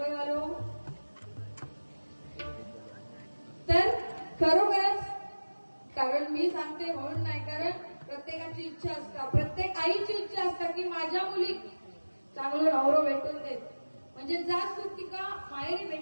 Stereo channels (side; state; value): both; inverted; correlation -1.00